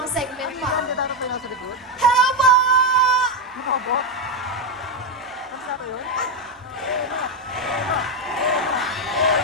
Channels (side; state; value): both; normal; correlation 0.07